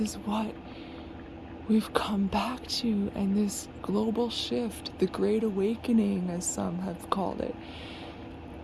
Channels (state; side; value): identical; both; correlation 1.00